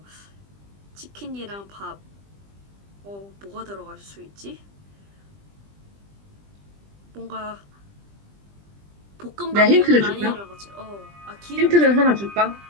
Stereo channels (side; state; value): left; late; 20 ms